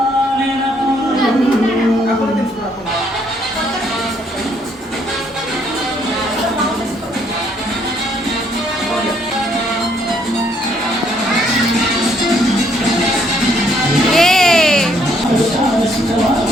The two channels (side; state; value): both; normal; correlation 0.68